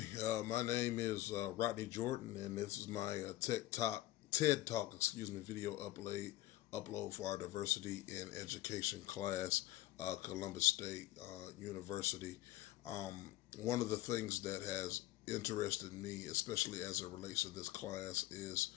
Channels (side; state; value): right; quieter; 16.3 dB